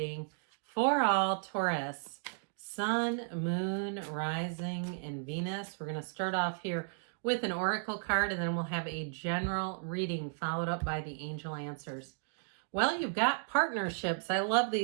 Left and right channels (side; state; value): left; silent; digital silence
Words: for all Taurus, Sun, Moon, Rising, and Venus. We're going to start off here with an oracle card and then we'll have a general reading followed up by the angel answers. Well, you've got partnerships. I love